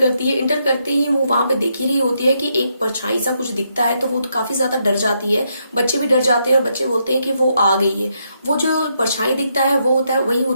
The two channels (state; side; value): inverted; both; correlation -0.78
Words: है। एंटर करते ही वो वहां पे देख ही रही होती है कि एक परछाई सा कुछ दिखता है, तो वो काफी ज्यादा डर जाती है। बच्चे भी डर जाते हैं और बच्चे बोलते हैं कि वो आ गई है। वो जो परछाई दिखता है वो होता है, वही